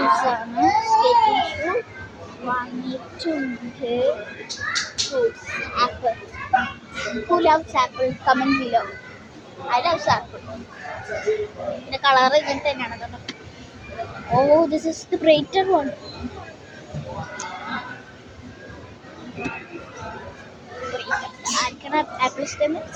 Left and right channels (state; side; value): identical; both; correlation 1.00